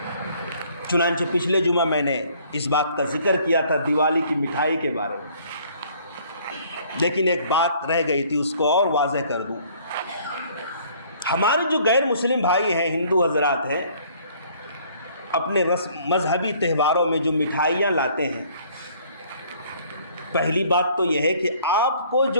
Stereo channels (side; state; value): both; inverted; correlation -0.58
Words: چنانچہ پچھلے جمعہ میں نے اس بات کا ذکر کیا تھا دیوالی کی مٹھائی کے بارے میں، لیکن ایک بات رہ گئی تھی، اس کو اور واضح کر دوں۔ ہمارے جو غیر مسلم بھائی ہیں، ہندو حضرات ہیں، اپنے مذہبی تہواروں میں جو مٹھائیاں لاتے ہیں، پہلی بات تو یہ ہے کہ آپ کو